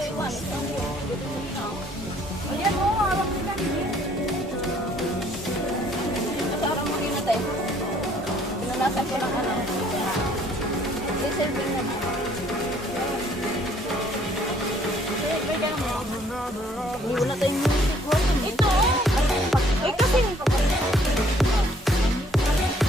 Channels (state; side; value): normal; both; correlation 0.62